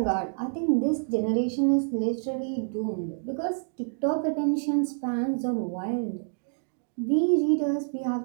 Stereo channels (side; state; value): left; silent; digital silence